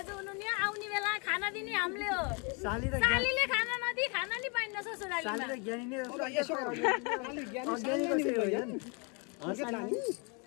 हुनुहुने, आउने बेला खाना दिने हामीले हो। सालीले खाना नदिई खाना नि पाइन्न ससुरालीमा।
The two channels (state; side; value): quieter; right; 33.3 dB